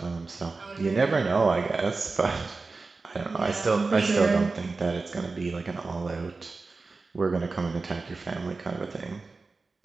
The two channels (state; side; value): quieter; left; 3.9 dB